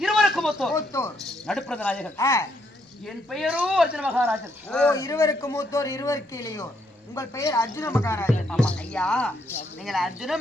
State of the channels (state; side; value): normal; both; correlation 0.74